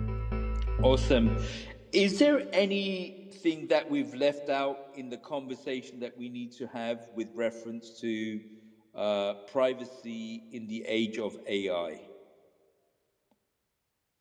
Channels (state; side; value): identical; both; correlation 1.00